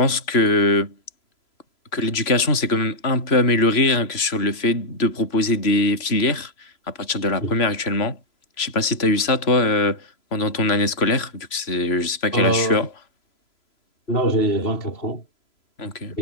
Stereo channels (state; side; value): late; right; 3.0 ms